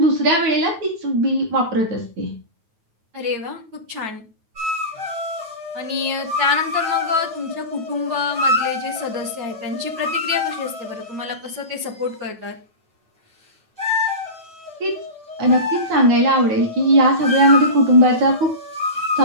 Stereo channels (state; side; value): late; left; 9.3 ms